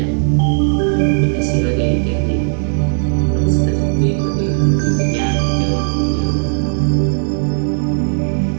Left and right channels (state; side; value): silent; left; 67 dB below the other